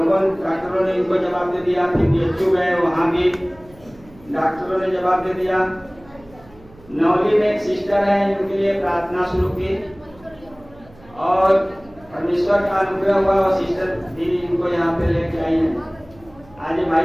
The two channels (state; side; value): noise; right; hum, 25 dB below the sound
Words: डॉक्टरों ने इनको जवाब दे दिया। फिर DHU गए, वहाँ भी डॉक्टरों ने जवाब दे दिया। नौली में एक सिस्टर है, इनके लिए प्रार्थना शुरू की और परमेश्वर का अनुग्रह हुआ, और सिस्टर भी इनको यहाँ पे लेके आई है। आज ये भाई